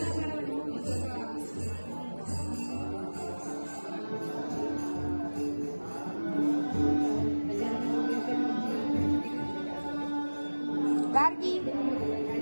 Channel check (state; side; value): inverted; both; correlation -1.00